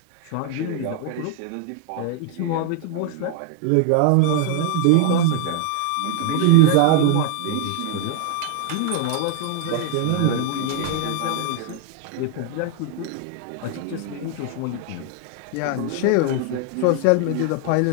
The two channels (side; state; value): both; different; correlation 0.00